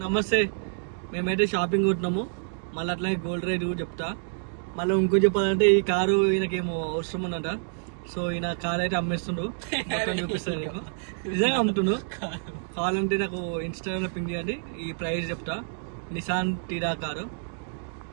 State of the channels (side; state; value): left; silent; digital silence